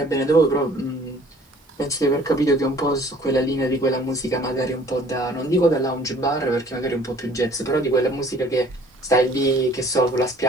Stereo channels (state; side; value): normal; both; correlation 0.53